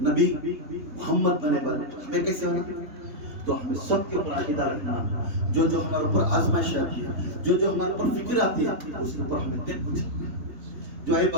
نبی محمد بنے بن ہمیں کیسے ہونا؟ تو ہمیں سب کے اوپر عقیدہ رکھنا، جو جو ہمارے اوپر آزمائش آتی ہے، جو جو ہمارے اوپر فکر آتی ہے اس کے اوپر ہمیں دیکھ پوچھنا. جو ہے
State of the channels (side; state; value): left; late; 3.5 ms